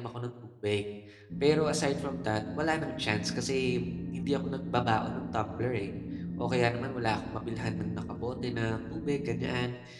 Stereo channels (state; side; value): identical; both; correlation 1.00